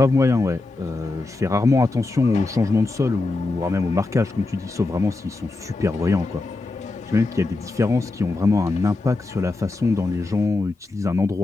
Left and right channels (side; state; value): right; quieter; 3.2 dB